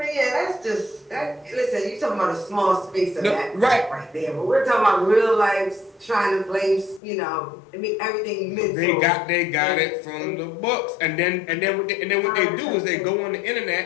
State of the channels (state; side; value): drops out; right; at 7.0 s